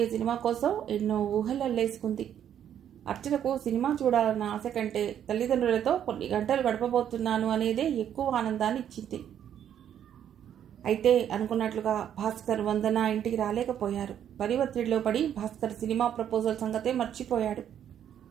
సినిమా కోసం ఎన్నో ఊహలు అల్లేసుకుంది. అర్చనకు సినిమా చూడాలన్న ఆశ కంటే తల్లిదండ్రులతో కొన్ని గంటలు గడపబోతున్నాను అనేదే ఎక్కువ ఆనందాన్ని ఇచ్చింది. అయితే అనుకున్నట్లుగా భాస్కర్, వందన ఇంటికి రాలేకపోయారు. పని ఒత్తిడిలో పడి భాస్కర్ సినిమా ప్రపోజల్ సంగతే మర్చిపోయాడు.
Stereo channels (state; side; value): quieter; left; 9.7 dB